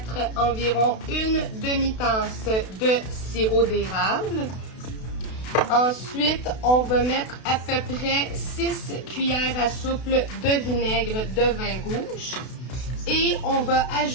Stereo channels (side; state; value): right; late; 32 ms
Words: environ une demi-tasse de sirop d'érable. Ensuite, on va mettre à peu près 6 cuillères à soupe de vinaigre de vin rouge. Et on va